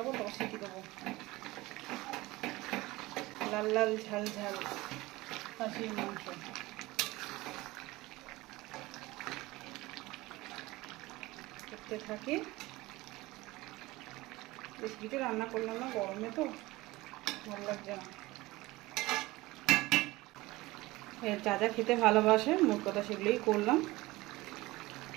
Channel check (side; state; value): left; quieter; 20.1 dB